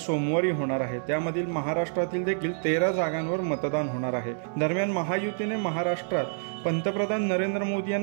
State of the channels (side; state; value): left; silent; digital silence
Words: होणार आहे। त्यामधील महाराष्ट्रातील देखील 13 जागांवर मतदान होणार आहे। दरम्यान महायुतीने महाराष्ट्रात पंतप्रधान नरेंद्र मोदी